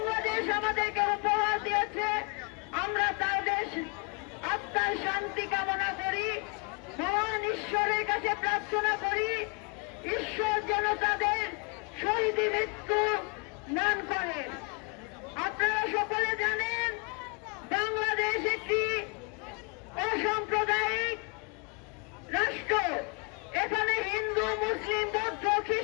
আমাদেরকে উপহার দিয়েছে, আমরা তাদের আত্মার শান্তি কামনা করি, মহান ঈশ্বরের কাছে প্রার্থনা করি ঈশ্বর যেন তাদের শহীদ মৃত্যু দান করেন। আপনারা সকলে জানেন বাংলাদেশ একটি অসাম্প্রদায়িক রাষ্ট্র। এখানে হিন্দু, মুসলিম, বৌদ্ধ,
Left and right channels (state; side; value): quieter; right; 33.3 dB